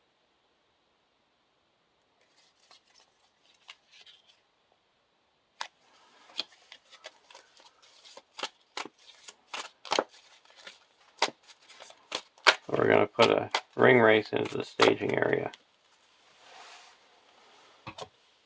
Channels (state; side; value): identical; both; correlation 1.00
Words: We're going to put a ring race into the staging area.